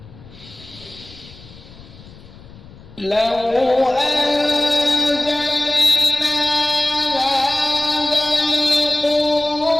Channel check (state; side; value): noise; left; rumble, 20 dB below the sound